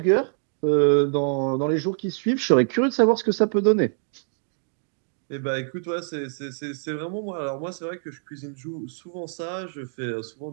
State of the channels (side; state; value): left; silent; digital silence